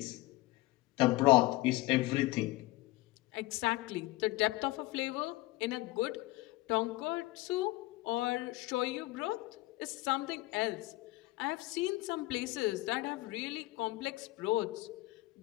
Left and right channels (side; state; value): right; quieter; 19.5 dB